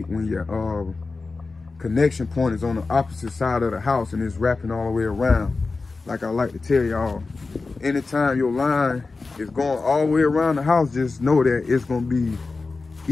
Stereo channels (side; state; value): right; quieter; 3.9 dB